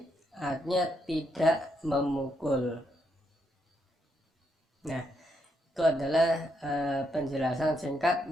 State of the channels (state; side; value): normal; both; correlation 0.78